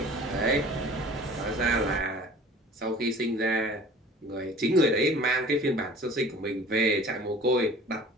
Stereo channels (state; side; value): normal; both; correlation 0.46